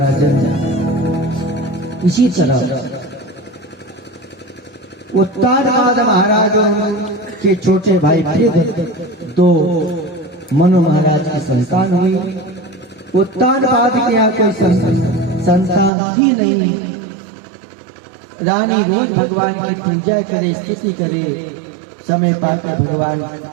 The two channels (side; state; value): left; drops out; at 15.9 s